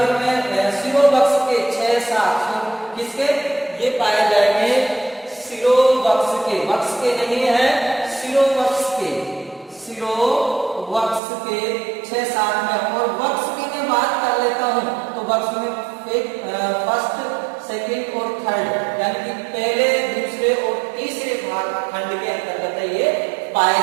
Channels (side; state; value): left; drops out; at 11.2 s